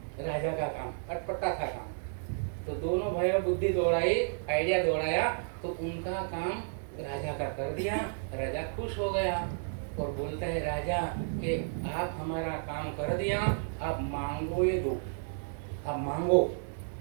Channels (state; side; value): silent; left; digital silence